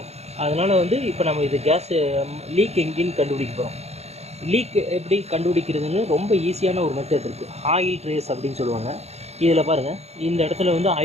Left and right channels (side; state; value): left; late; 0.31 ms